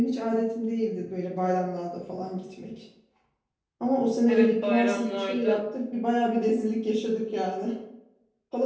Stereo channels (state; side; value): identical; both; correlation 1.00